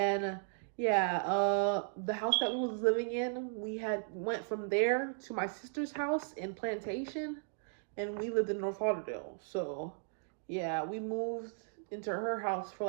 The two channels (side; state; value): left; silent; digital silence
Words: yeah, the house that we was living in, we had went from there to my sister's house in Plantation, and we lived in North Lauderdale. So yeah, we moved into her house for